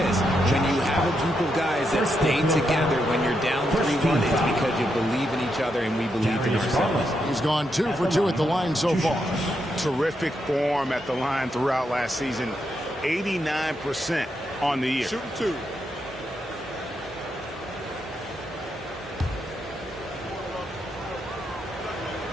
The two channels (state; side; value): normal; both; correlation 0.82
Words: When you have a group of guys that stay together when you're down 3-1, it's because you believe in each other and we believe in ourselves. He's gone 2 for 2 at the line so far. Terrific form at the line throughout last season. 89% on the year. Shooting 2.